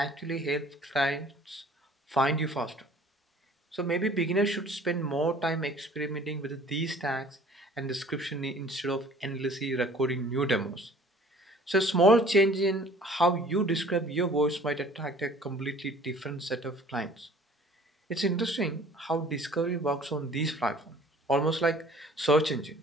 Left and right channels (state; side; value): normal; both; correlation 0.51